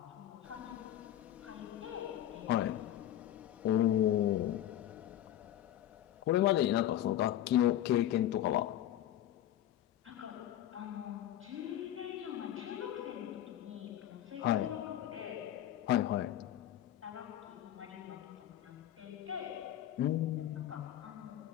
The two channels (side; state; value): right; quieter; 12.3 dB